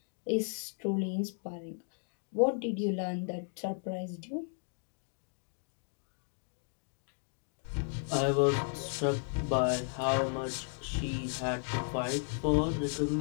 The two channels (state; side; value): silent; right; 55 dB below the other